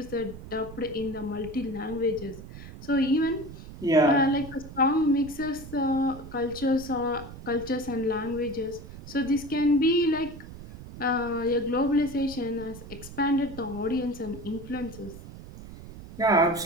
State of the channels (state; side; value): noise; right; rumble, 14 dB below the sound